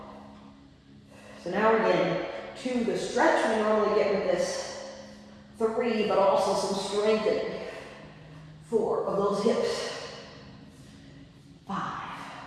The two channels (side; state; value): both; identical; correlation 1.00